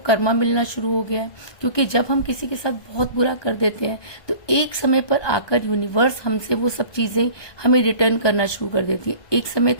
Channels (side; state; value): right; late; 1.2 ms